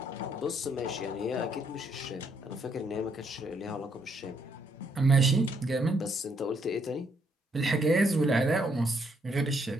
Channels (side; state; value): both; normal; correlation 0.72